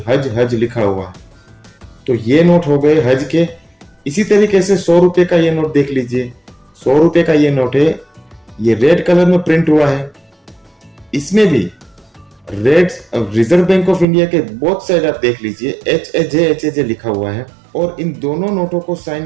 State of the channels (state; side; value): drops out; left; at 14.1 s